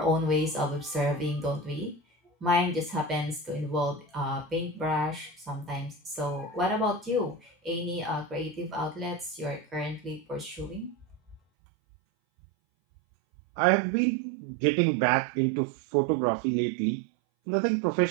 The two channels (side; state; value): left; drops out; at 11.4 s